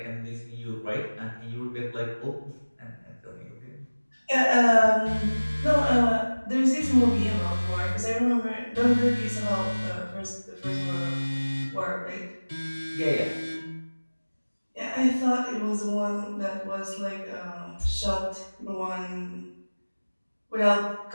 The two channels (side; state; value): both; inverted; correlation -1.00